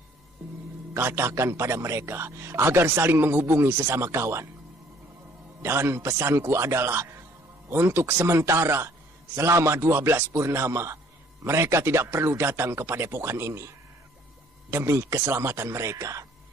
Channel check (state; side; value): normal; both; correlation 0.59